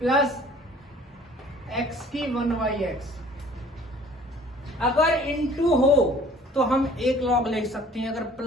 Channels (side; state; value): both; normal; correlation 0.52